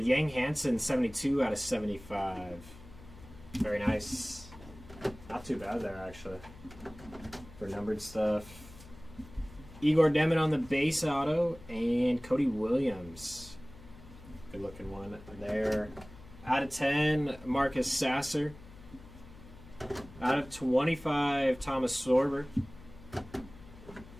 Yang Hansen 72 out of 75. Very nice. Not too bad there actually for numbered stuff. Igor Demin on the base auto and Cody Williams. Good looking one there. Out of 10, Marcus Sasser. Out of 25, Thomas Sorber.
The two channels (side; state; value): left; noise; hum, 19 dB below the sound